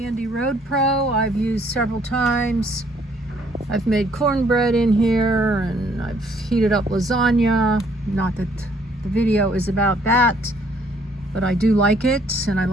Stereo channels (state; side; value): normal; both; correlation 0.64